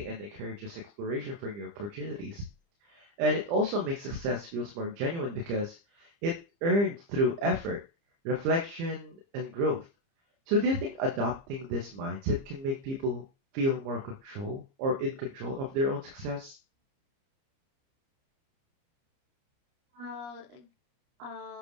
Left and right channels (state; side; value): late; left; 30 ms